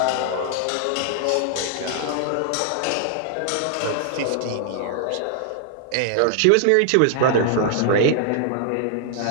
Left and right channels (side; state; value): both; different; correlation 0.00